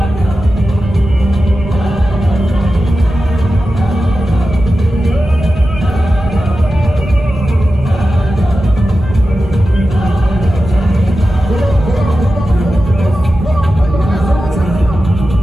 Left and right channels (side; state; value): right; noise; rumble, 10 dB below the sound